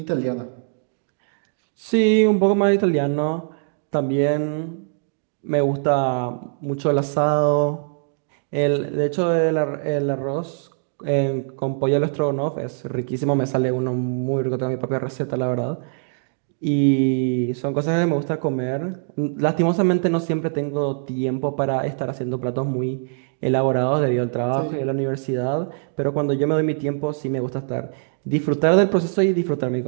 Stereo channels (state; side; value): silent; left; digital silence